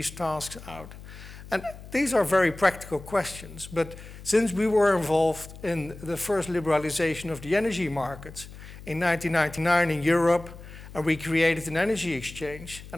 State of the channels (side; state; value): left; noise; hum, 15 dB below the sound